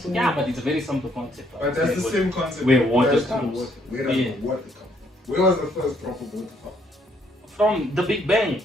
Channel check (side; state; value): both; normal; correlation 0.68